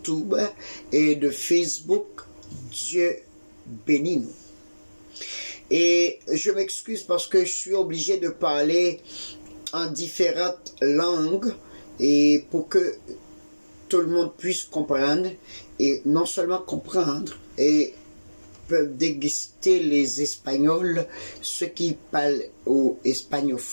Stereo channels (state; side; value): inverted; both; correlation -1.00